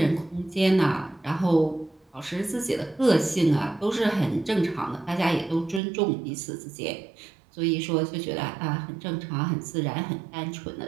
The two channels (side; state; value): left; drops out; at 5.8 s